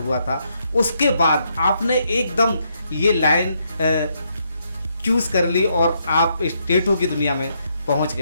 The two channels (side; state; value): both; inverted; correlation -0.77